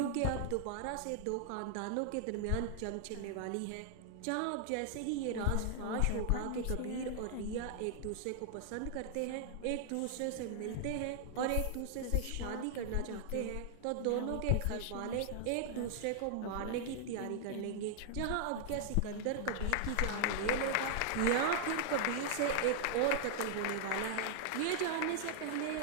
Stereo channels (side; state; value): both; different; correlation -0.01